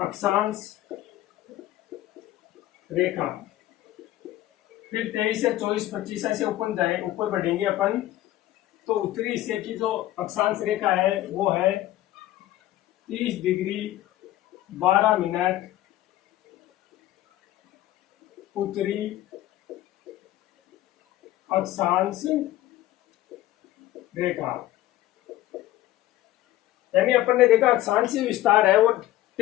रेखा। फिर 23 से 24 25 ऐसे ऊपर बढ़ेंगे अपन। तो उत्तरी हिस्से की जो अक्षांश रेखा है वो है 30 डिग्री 12 मिनट उत्तरी अक्षांश रेखा। यानी अपन ने देखा अक्षांशीय विस्तार है वो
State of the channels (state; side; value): quieter; right; 15.0 dB